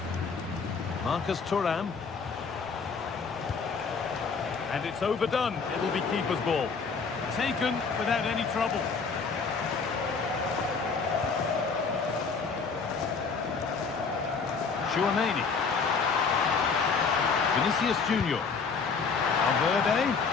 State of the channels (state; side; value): quieter; right; 5.1 dB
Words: Marcus Thuram. And it's overdone. It'll be keeper's ball. Taken without any trouble. Chouameni. Vinicius Junior. Valverde.